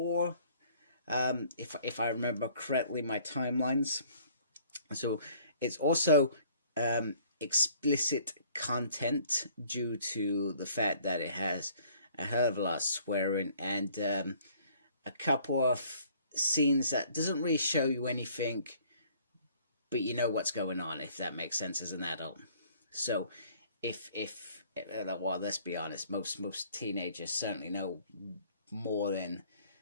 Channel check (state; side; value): inverted; both; correlation -0.57